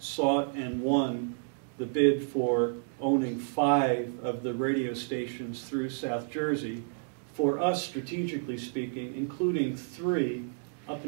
and won the bid for owning 5 of the radio stations through South Jersey. For us, strategically speaking, including 3 up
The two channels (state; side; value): silent; left; digital silence